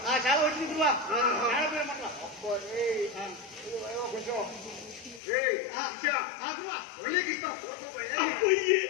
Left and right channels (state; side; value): drops out; right; at 5.2 s